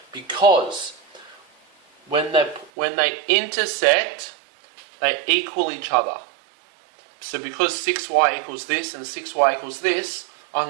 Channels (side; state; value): left; drops out; at 2.7 s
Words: because when they intersect, they equal each other. So because 6y equals this and 6y equals this, I